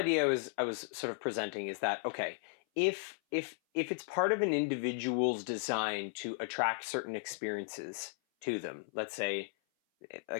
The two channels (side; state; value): right; silent; 54 dB below the other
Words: I was sort of presenting is that, okay, if it's part of an individual's design to attract certain experiences to them, let's say